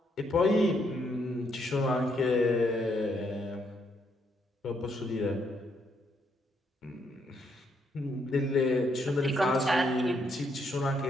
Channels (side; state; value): both; normal; correlation 0.74